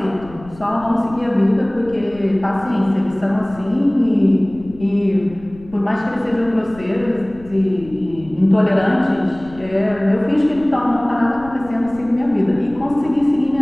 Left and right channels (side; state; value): left; noise; rumble, 20 dB below the sound